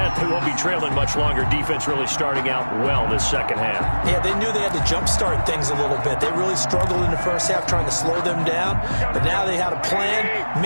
they won't be trailing much longer. Defense really starting out well this second half. Yeah, they knew they had to jumpstart things a little bit. They really struggled in the first half trying to slow them down, but now they had a plan,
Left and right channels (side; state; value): both; inverted; correlation -1.00